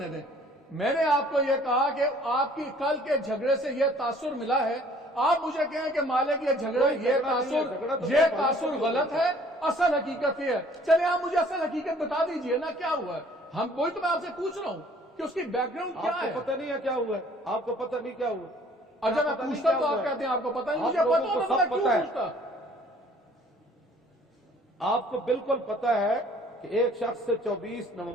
دیں. میں نے آپ کو یہ کہا کہ آپ کی کل کے جھگڑے سے یہ تاثر ملا ہے. آپ مجھے کہیں کہ مالک یہ تاثر غلط ہے، اصل حقیقت یہ ہے. چلے آپ مجھے اصل حقیقت بتا دیجئے نا کیا ہوا ہے. وہی تو میں آپ سے پوچھ رہا ہوں کہ اس کی بیک گراؤنڈ کیا ہے. آپ کو پتہ نہیں ہے کیا ہوا ہے؟ آپ کو پتہ نہیں کیا ہوا؟ اچھا میں پوچھتا تو آپ کہتے ہیں آپ کو پتہ نہیں. مجھے پتہ ہوتا تو میں کیوں پوچھتا؟ آپ کو بالکل پتہ ہے کہ ایک شخص سے 24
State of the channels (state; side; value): normal; both; correlation 0.56